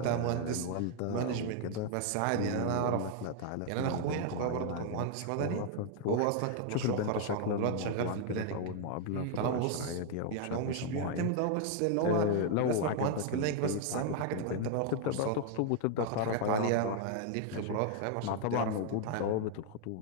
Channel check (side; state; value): both; different; correlation 0.00